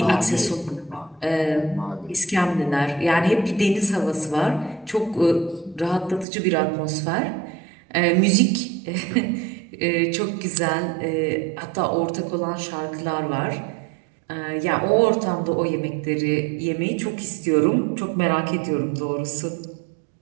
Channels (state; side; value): drops out; left; at 6.2 s